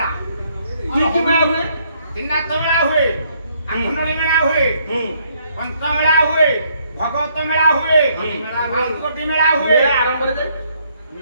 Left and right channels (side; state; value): both; inverted; correlation -0.69